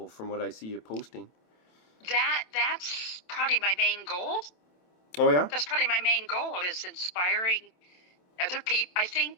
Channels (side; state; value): right; late; 27 ms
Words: from what I see you posting. That's probably my main goal. Oh yeah. That's probably my main goal is inspiring other people. I